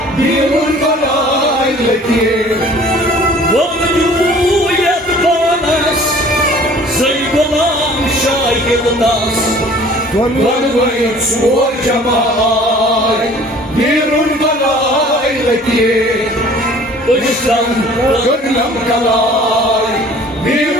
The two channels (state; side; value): normal; both; correlation 0.50